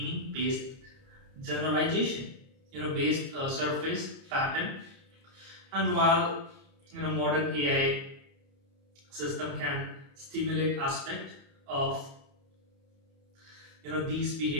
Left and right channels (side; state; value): left; late; 30 ms